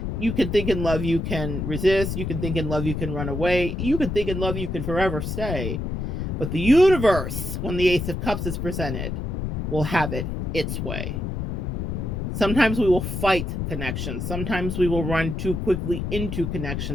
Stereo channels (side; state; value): left; noise; rumble, 3 dB below the sound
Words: You can think in love, you can resist. You can think in love, you can run away. You can think in love, you can forever stay. But the universe, when the Ace of Cups is presented, will have it its way. Sometimes we will fight connections. Sometimes we will run too quickly into